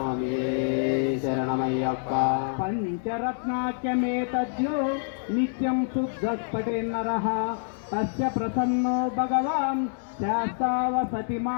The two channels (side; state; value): right; silent; digital silence